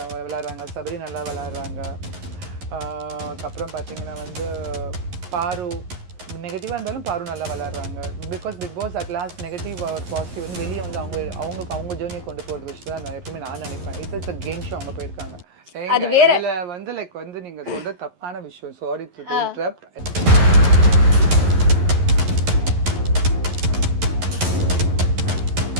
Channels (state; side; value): late; left; 11 ms